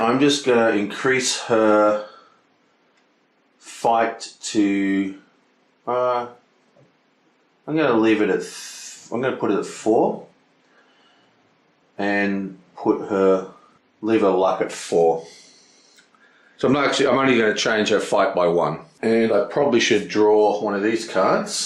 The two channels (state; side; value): identical; both; correlation 1.00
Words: just going to increase her fight to, I'm going to leave it at, I'm going to put it at 4 and leave her luck at 4. So I'm only going to change her fight by 1. And I probably should draw one of these